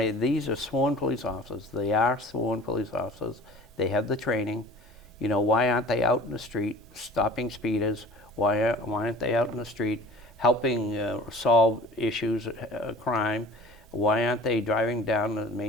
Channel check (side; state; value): both; normal; correlation 0.44